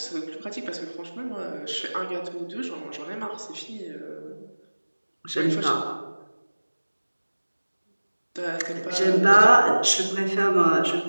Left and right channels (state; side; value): inverted; both; correlation -1.00